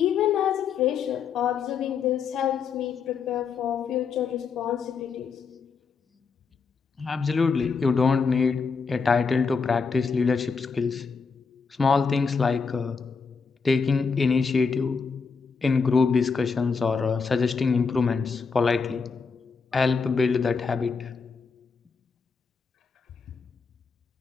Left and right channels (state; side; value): quieter; right; 5.3 dB